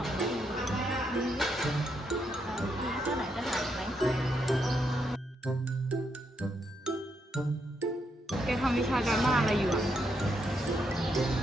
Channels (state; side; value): normal; both; correlation 0.79